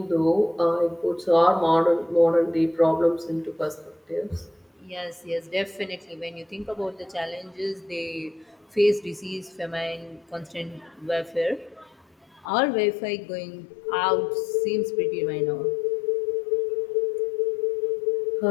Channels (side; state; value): right; drops out; at 12.5 s